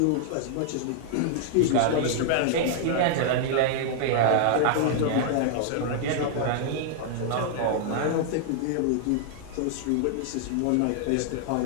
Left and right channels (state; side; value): different; both; correlation -0.01